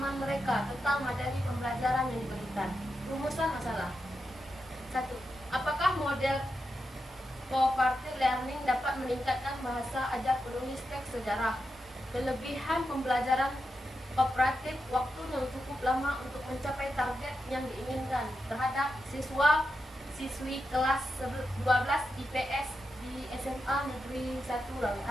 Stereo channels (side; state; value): both; normal; correlation 0.88